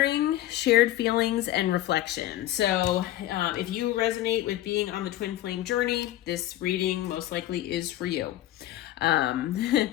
shared feelings, and reflection. So if you resonate with being on the twin flame journey, this reading most likely is for you.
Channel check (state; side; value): quieter; right; 14.3 dB